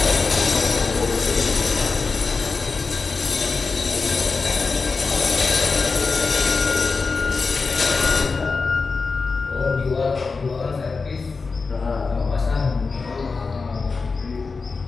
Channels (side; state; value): right; quieter; 4.4 dB